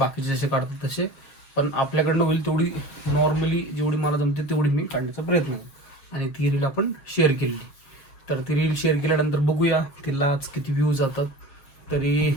जसे काढतात तसे, पण आपल्याकडनं होईल तेवढी नॉर्मली जेवढी मला जमते तेवढी मी काढण्याचा प्रयत्न केला आणि ती रील आपण शेअर केली. तर ती रील शेअर केल्यानंतर बघूया तिला आज किती व्ह्यूज जातात. तरी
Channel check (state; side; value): late; right; 7.2 ms